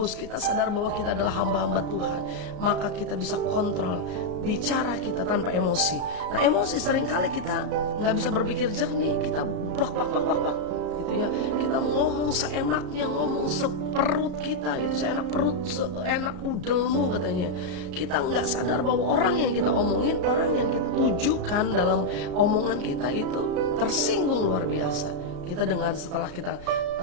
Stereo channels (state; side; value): late; left; 33 ms